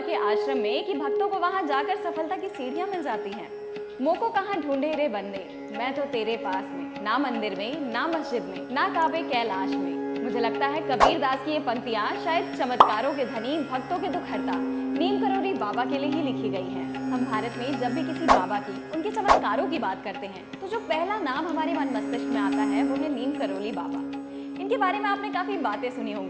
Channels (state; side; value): identical; both; correlation 1.00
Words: के आश्रम में कि भक्तों को वहां जाकर सफलता की सीढ़ियां मिल जाती हैं? मोको कहाँ ढूंढे रे बंदे, मैं तो तेरे पास में, ना मंदिर में, ना मस्जिद में, ना काबे कैलाश में। मुझे लगता है कबीर दास की ये पंक्तियां शायद चमत्कारों के धनी, भक्तों के दुख हरता नीम करोली बाबा के लिए ही लिखी गई हैं। हम भारत में जब भी किसी बाबा की, उनके चमत्कारों की बात करते हैं तो जो पहला नाम हमारे मन मस्तिष्क में आता है वो है नीम करोली बाबा। इनके बारे में आपने काफी बातें सुनी